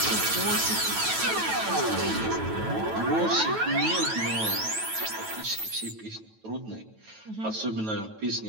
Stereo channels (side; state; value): left; late; 9.2 ms